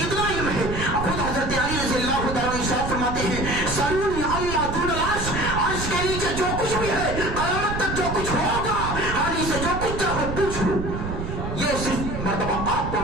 علم ہے۔ خود حضرت علی رضی اللہ تعالیٰ عنہ ارشاد فرماتے ہیں سلونی عما دون العرش، عرش کے نیچے جو کچھ بھی ہے، قیامت تک جو کچھ ہوگا، علی سے جو کچھ چاہو پوچھ لو۔ یہ صرف مرتبہ آپ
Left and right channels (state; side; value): noise; right; rumble, 5 dB below the sound